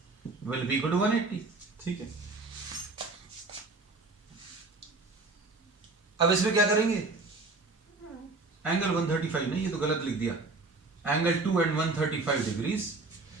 will be equal to 180। ठीक है, अब इसमें क्या करेंगे, एंगल 135 नहीं, ये तो गलत लिख दिया, angle 2 and 135 degrees,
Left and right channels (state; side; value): quieter; left; 3.5 dB